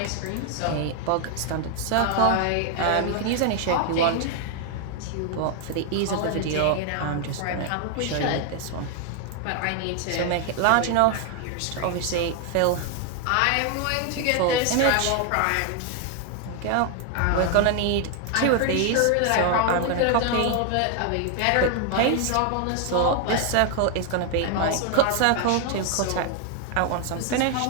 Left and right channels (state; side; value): different; both; correlation 0.00